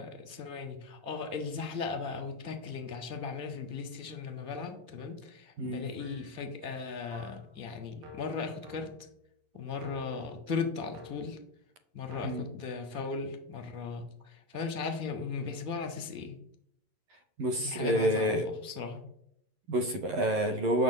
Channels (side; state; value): left; late; 11 ms